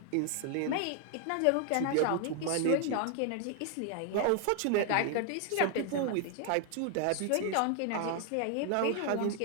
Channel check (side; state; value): both; different; correlation 0.00